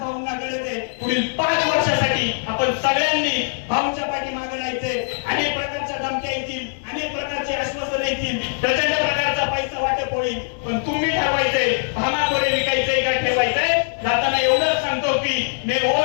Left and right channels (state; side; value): silent; right; digital silence